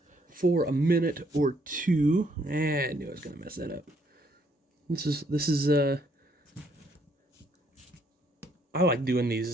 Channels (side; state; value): both; normal; correlation 0.69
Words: for a minute or two. I knew I was gonna mess that up. This is I like doing